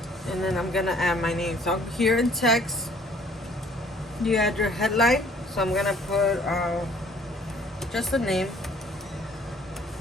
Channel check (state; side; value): normal; both; correlation 0.58